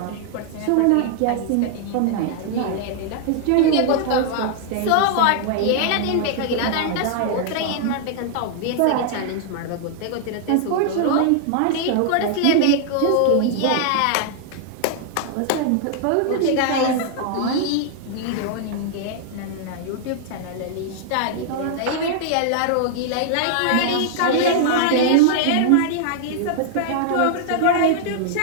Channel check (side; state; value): both; different; correlation -0.01